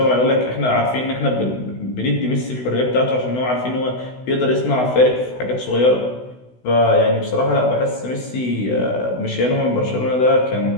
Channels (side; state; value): right; late; 16 ms